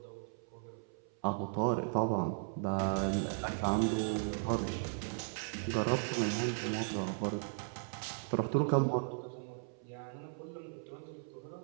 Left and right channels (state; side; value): silent; left; 53 dB below the other